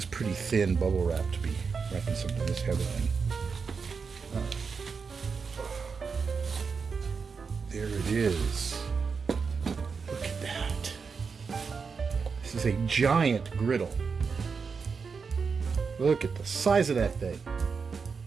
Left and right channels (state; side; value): quieter; left; 5.4 dB